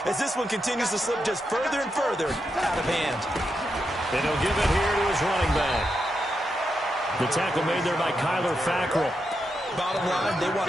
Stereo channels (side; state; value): both; normal; correlation 0.85